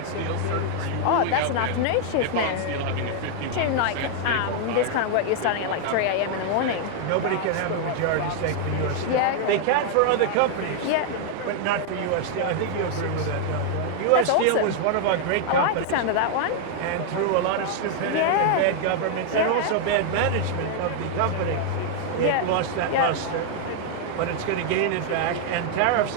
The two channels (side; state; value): both; different; correlation 0.00